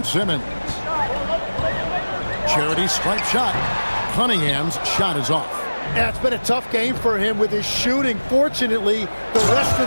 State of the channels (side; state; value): both; inverted; correlation -1.00